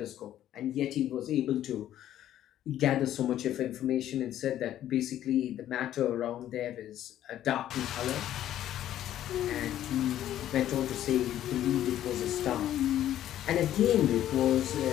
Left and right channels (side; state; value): right; quieter; 12.0 dB